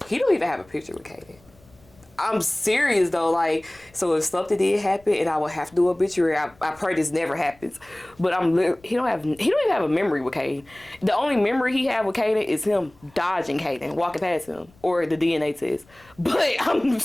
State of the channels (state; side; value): noise; left; rumble, 29 dB below the sound